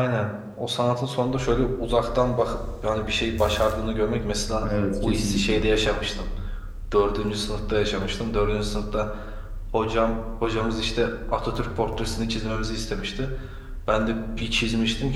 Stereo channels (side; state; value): both; identical; correlation 1.00